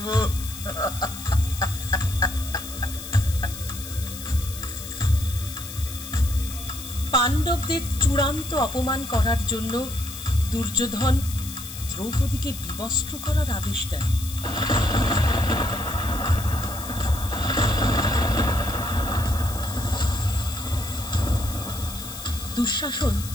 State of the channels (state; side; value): noise; left; hiss, 11 dB below the sound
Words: পাণ্ডবদের চূড়ান্ত অপমান করার জন্য দুর্যোধন দ্রৌপদীকে বিবস্ত্র করার আদেশ দেন। দুঃশাসন